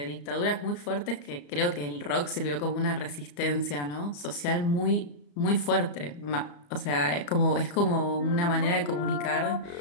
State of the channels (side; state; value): right; late; 34 ms